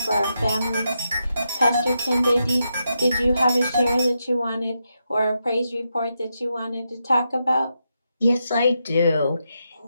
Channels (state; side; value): inverted; both; correlation -0.85